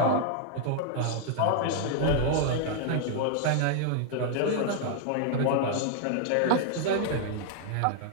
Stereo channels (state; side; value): different; both; correlation -0.01